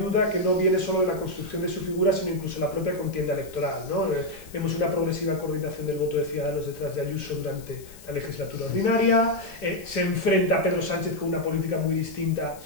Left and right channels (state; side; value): noise; left; hiss, 21 dB below the sound